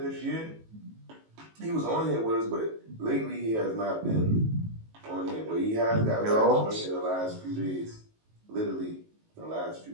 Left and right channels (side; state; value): left; late; 18 ms